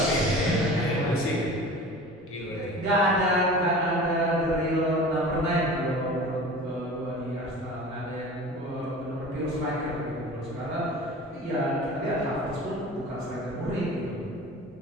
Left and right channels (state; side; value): normal; both; correlation 0.38